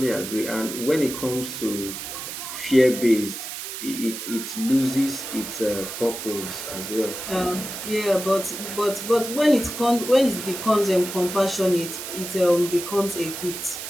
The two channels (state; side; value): noise; right; hiss, 8 dB below the sound